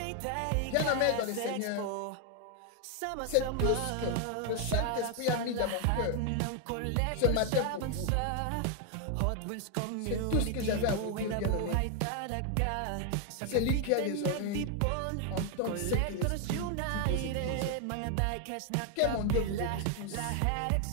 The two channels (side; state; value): both; different; correlation 0.00